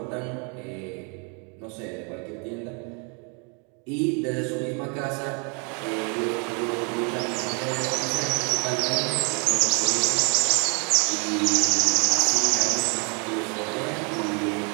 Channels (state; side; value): quieter; left; 35.9 dB